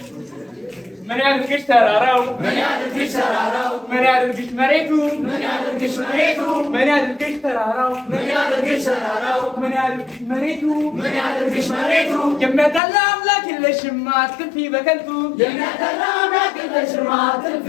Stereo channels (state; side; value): drops out; right; at 12.8 s